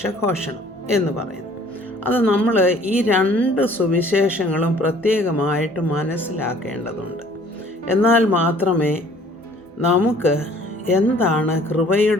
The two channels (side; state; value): both; normal; correlation 0.55